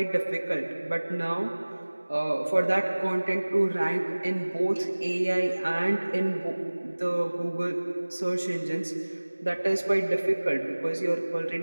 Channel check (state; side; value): inverted; both; correlation -1.00